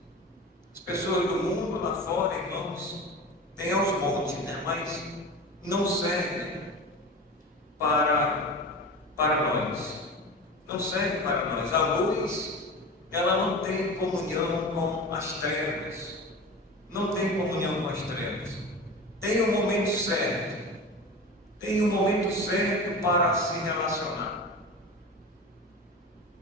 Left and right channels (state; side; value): normal; both; correlation 0.30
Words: As pessoas do mundo lá fora, irmãos, tem aos montes, né? Mas não servem para nós. Não serve para nós. A luz, ela não tem comunhão com as trevas. Não tem comunhão com as trevas. Tem um momento certo. Tem um momento certo para se relacionar.